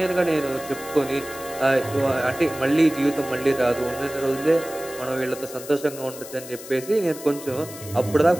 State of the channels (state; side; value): noise; left; hiss, 14 dB below the sound